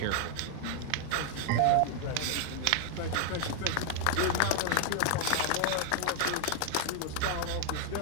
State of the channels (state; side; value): different; both; correlation 0.00